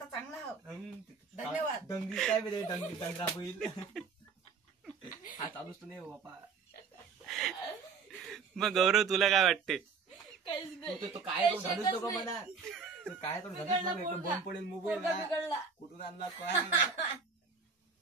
चांगला आहो. धन्यवाद. डंगी काय बरे डंगी डंगरा बैल हा चालूच नाही हो बापा. मग गौरव तुला काय वाटते? तो काय तो झालंच नको म्हणा. तो काय तो झालंच नको. एकदम बंद पडेल मोबाईल कुठून आणला काय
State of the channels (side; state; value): left; quieter; 5.3 dB